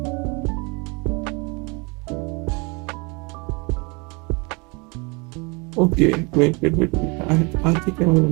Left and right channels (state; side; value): quieter; left; 29.8 dB